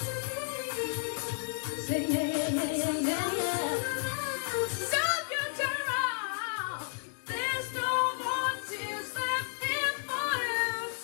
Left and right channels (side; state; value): right; silent; digital silence